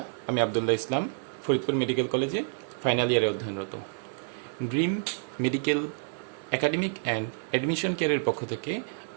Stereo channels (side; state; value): left; silent; 59 dB below the other